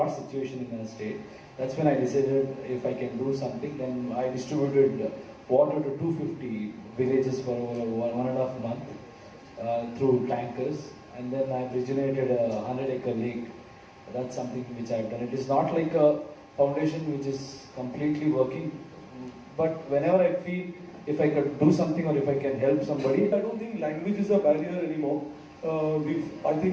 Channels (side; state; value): both; identical; correlation 1.00